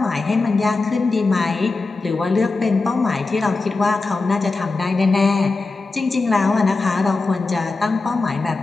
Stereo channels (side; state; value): right; quieter; 3.7 dB